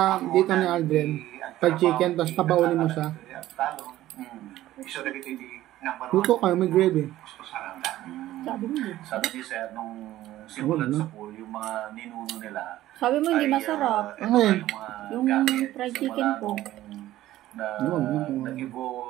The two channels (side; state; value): left; quieter; 14.7 dB